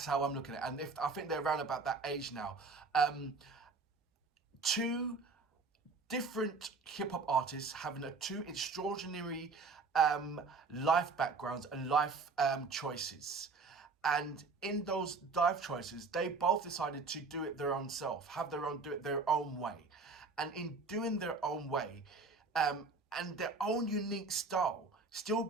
how I'm looking at it. And I think they're around about that age now. Two different hip hop artists having two extraordinary life backgrounds and life choices. And in those life choices, they both decided to do it their own self, do it their own way. And in doing their own way, and their own unique style, still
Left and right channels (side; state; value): left; quieter; 4.2 dB